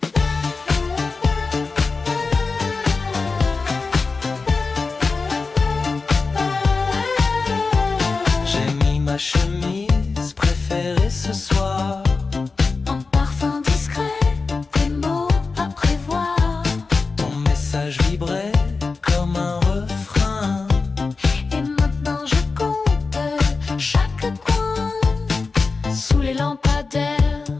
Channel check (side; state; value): right; quieter; 4.2 dB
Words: J'ai mis ma chemise préférée ce soir. En parfum discret, des mots à prévoir. Ton message vibrait comme un refrain. Et maintenant je compte chaque coin. Sous les lampadaires,